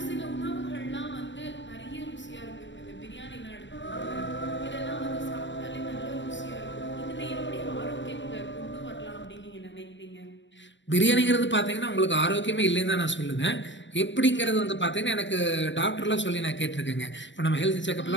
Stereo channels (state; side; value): late; right; 0.53 ms